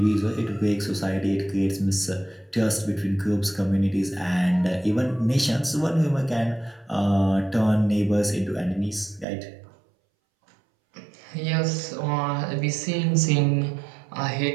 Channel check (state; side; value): drops out; left; at 9.2 s